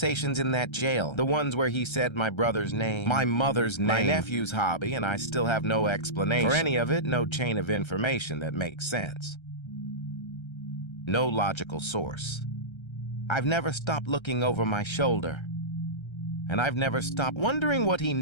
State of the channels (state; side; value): late; right; 1.3 ms